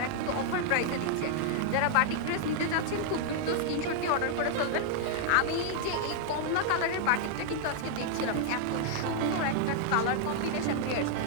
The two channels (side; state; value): both; different; correlation -0.01